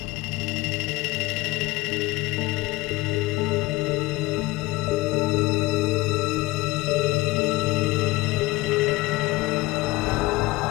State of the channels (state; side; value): quieter; right; 20.6 dB